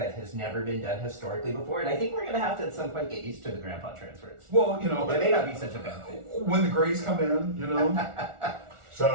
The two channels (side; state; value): left; late; 1.4 ms